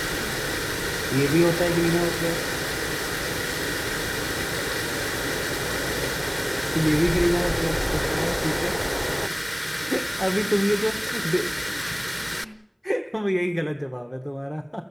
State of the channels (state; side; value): identical; both; correlation 1.00